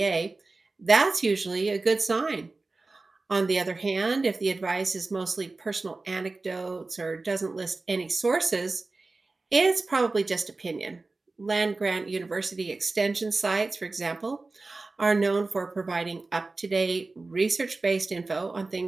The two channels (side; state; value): left; quieter; 3.5 dB